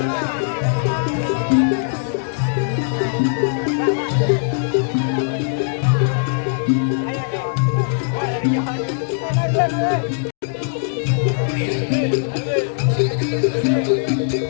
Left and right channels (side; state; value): right; silent; digital silence